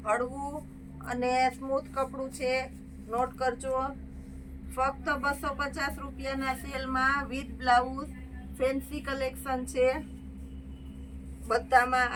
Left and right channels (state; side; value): identical; both; correlation 1.00